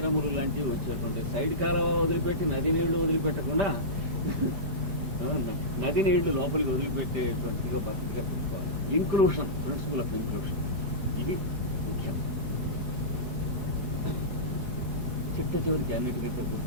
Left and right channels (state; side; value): late; left; 4.7 ms